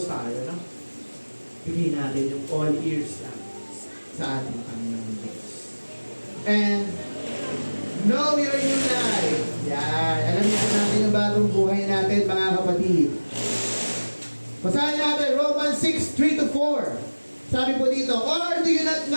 tayo, no? Bigyan natin yung all ears lang sa ating Panginoon Diyos. And know your new life. Yan. Alam niyo natin yung bagong buhay natin, mga kapatid. Basahin natin, Romans 6:3-4. Sabi po dito, or do you not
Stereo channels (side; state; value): both; inverted; correlation -1.00